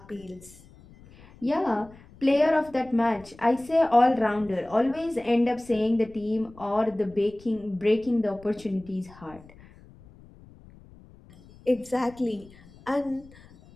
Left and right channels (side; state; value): left; noise; rumble, 23 dB below the sound